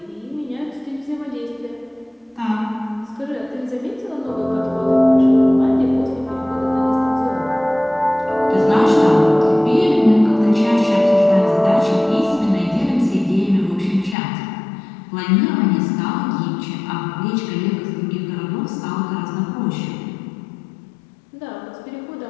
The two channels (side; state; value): right; drops out; at 14.2 s